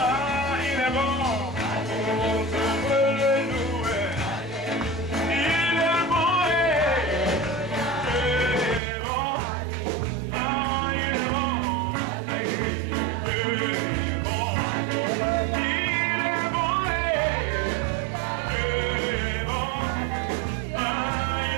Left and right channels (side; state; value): left; drops out; at 8.8 s